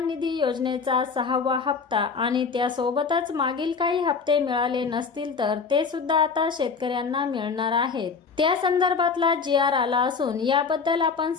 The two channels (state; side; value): quieter; right; 5.3 dB